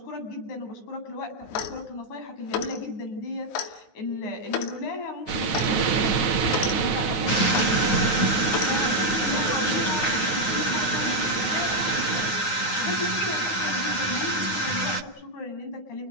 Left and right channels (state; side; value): late; right; 9.5 ms